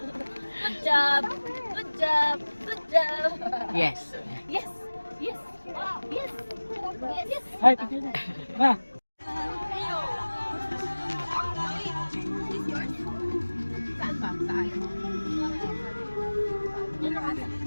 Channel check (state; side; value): inverted; both; correlation -1.00